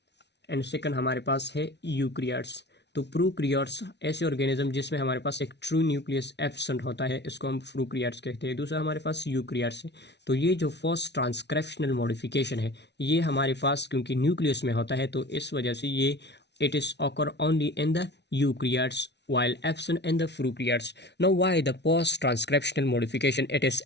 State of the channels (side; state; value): right; late; 0.50 ms